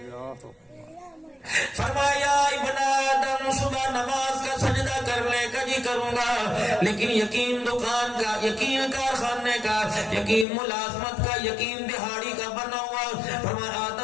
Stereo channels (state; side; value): drops out; right; at 10.5 s